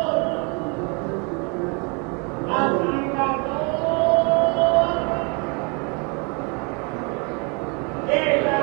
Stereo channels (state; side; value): quieter; left; 33.4 dB